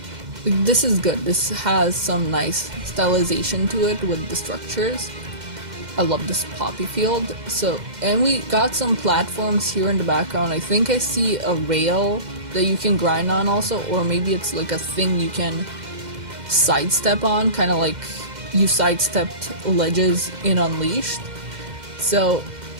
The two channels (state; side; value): late; left; 2.1 ms